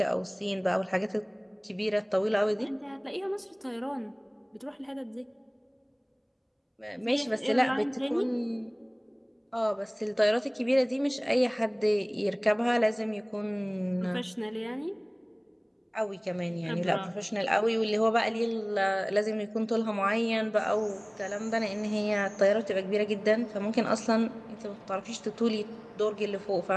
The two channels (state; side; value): identical; both; correlation 1.00